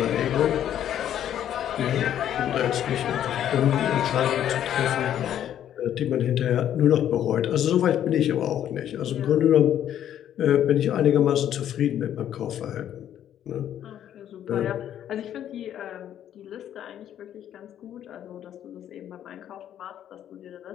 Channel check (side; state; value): right; quieter; 10.6 dB